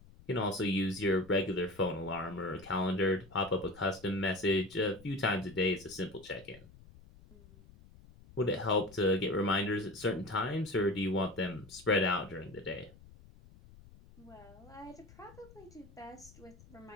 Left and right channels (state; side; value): noise; left; rumble, 22 dB below the sound